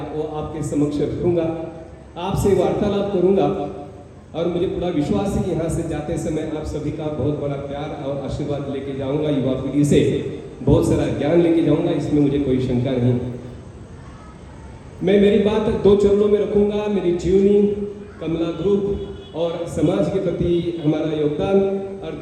वो आपके समक्ष रखूंगा, आपसे वार्तालाप करूंगा। और मुझे पूरा विश्वास है कि यहाँ से जाते समय आप सभी का बहुत बड़ा प्यार और आशीर्वाद लेके जाऊंगा। युवा पीढ़ी से बहुत सारा ज्ञान लेके जाऊंगा, इसमें मुझे कोई शंका नहीं। मैं मेरी बात 2 चरणों में रखूंगा, मेरी जीवनी, कमला ग्रुप और समाज के प्रति हमारा योगदान, और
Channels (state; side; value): identical; both; correlation 1.00